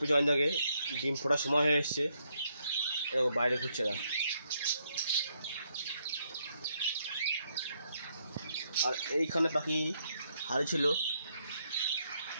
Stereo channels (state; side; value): inverted; both; correlation -0.76